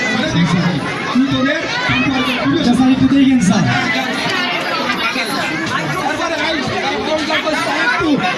তুই তোদের সম্পর্কে তুলে আচ্ছা স্যার একটু দেখেন স্যার তারপরে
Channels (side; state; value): both; identical; correlation 1.00